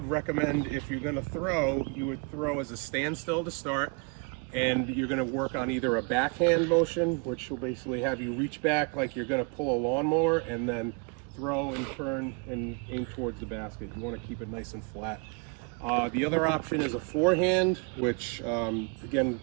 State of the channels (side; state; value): left; quieter; 34.4 dB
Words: recommend, if you're going to throw, you would throw as a standstill to start, and you're going to work on either a backhand motion, which will basically have you reach back like you're going to pull a lawnmower, and then throw and turn and aim towards the basket. You want to keep it nice and flat. The other option is a forehand, which again,